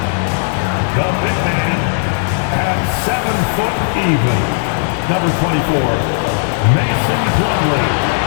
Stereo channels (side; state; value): right; silent; digital silence